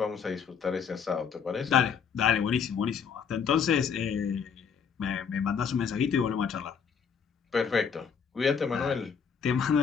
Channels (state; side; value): quieter; right; 6.8 dB